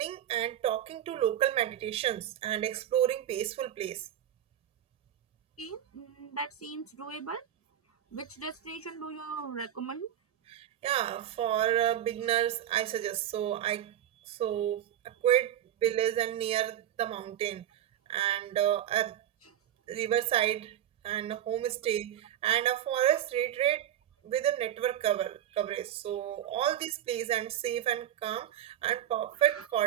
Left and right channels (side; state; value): left; quieter; 11.1 dB